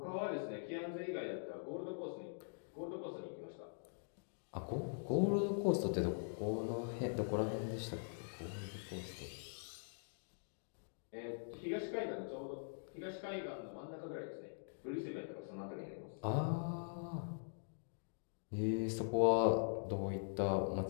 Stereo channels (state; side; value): silent; right; digital silence